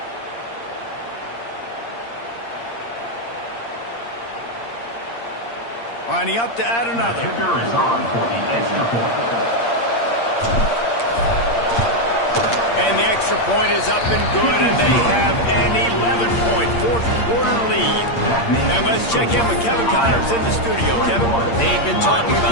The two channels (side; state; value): right; late; 8.6 ms